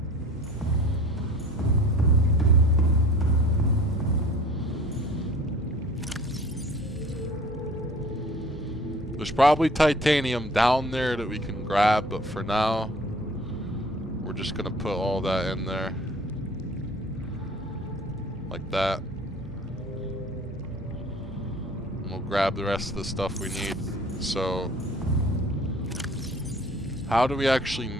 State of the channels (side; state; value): both; normal; correlation 0.48